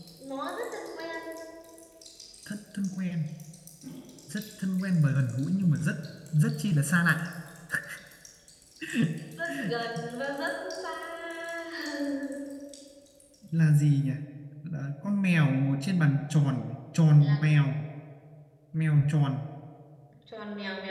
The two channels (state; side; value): identical; both; correlation 1.00